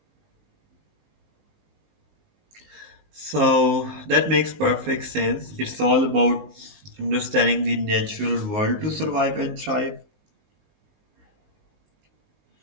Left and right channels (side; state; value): left; late; 19 ms